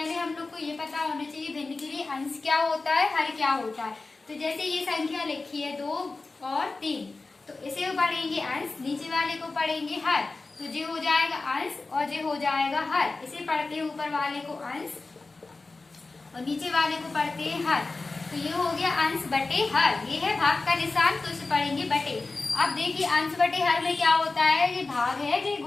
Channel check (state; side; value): quieter; right; 3.6 dB